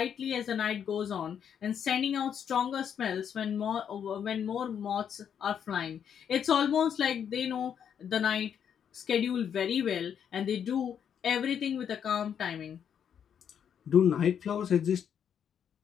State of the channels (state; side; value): quieter; right; 8.3 dB